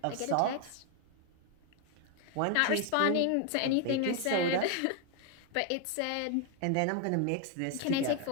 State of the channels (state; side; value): different; both; correlation 0.01